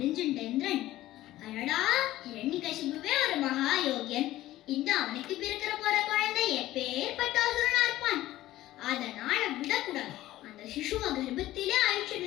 இந்திரன், அடடா, ஹிரண்யகசிபுவே ஒரு மகா யோகியன், இந்த அவனுக்கு பிறக்கிற போற குழந்தை எப்பேற்பட்ட அசுரனா இருப்பான், அதனால விடக்கூடாது, அந்த சிசுவ கர்ப்பத்திலே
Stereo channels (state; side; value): quieter; right; 15.3 dB